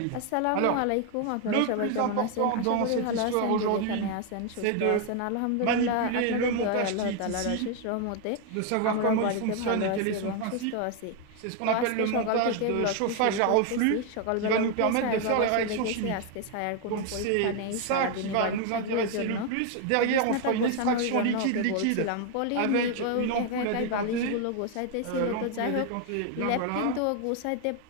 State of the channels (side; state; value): both; different; correlation 0.01